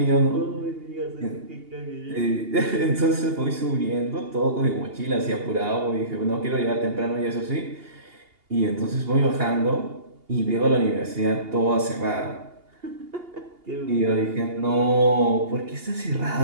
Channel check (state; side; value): late; left; 2.8 ms